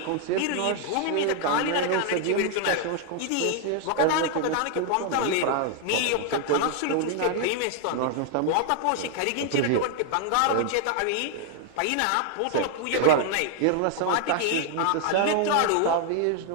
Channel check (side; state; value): both; different; correlation 0.00